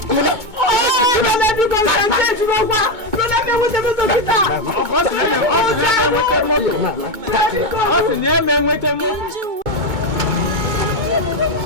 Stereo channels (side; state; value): left; late; 2.2 ms